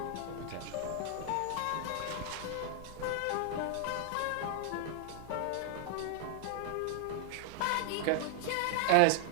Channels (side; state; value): both; different; correlation -0.01